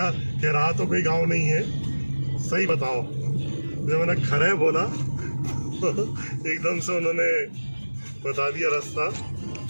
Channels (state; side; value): inverted; both; correlation -1.00